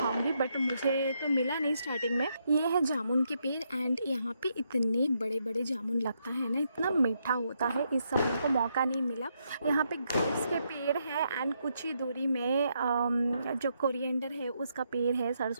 बट मुझे तो मिला नहीं स्टार्टिंग में। ये है जामुन के पेड़ एंड यहाँ पे इतने बड़े जामुन लगता है ना, इतना मीठा होता है। इस समय को मौका नहीं मिला। यहाँ पे ग्रेप्स के पेड़ है एंड कुछ ही दूरी में जो कोरिएंडर है उसका पेड़ है,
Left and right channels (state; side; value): inverted; both; correlation -0.79